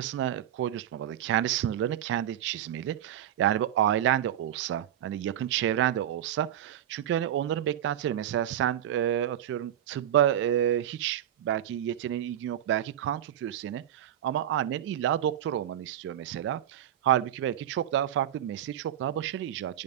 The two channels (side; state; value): left; quieter; 11.2 dB